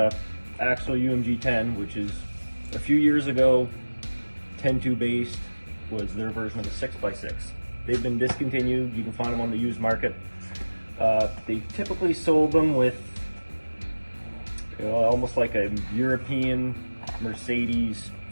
Axel UMG 10, which is a few years ago, 10-2 based was their version of a 6x6. They've been discontinued. You can find them on the used market. They typically sold them with almost like a European Mercedes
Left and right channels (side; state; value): both; inverted; correlation -1.00